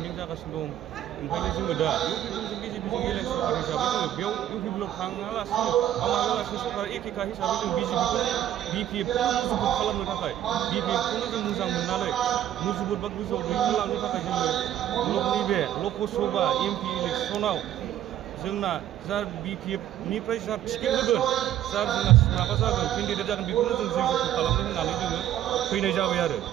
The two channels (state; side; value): quieter; left; 11.7 dB